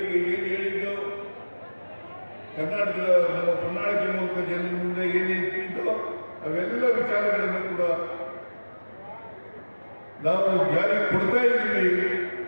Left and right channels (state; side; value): inverted; both; correlation -1.00